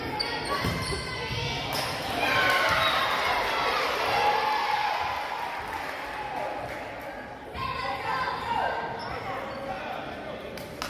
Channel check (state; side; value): identical; both; correlation 1.00